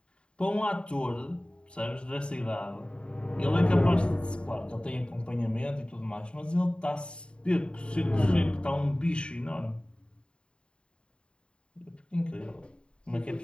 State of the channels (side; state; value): right; late; 0.053 ms